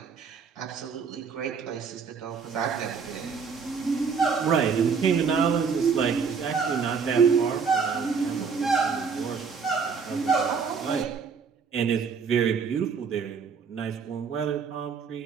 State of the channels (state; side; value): quieter; left; 5.8 dB